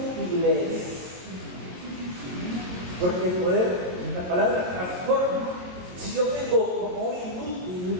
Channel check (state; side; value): late; left; 22 ms